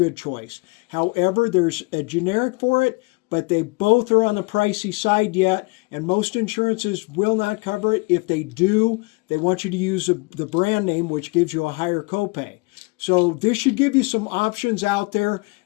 choice. However, there's a generic for it, but they both are on the pricey side yet, and most insurances will not cover it. If they do, they want you to use the brand name, which gives you a higher copay. So this should give you some options out there.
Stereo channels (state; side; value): quieter; right; 27.9 dB